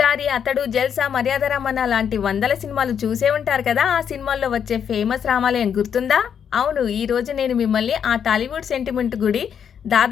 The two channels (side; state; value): right; quieter; 8.0 dB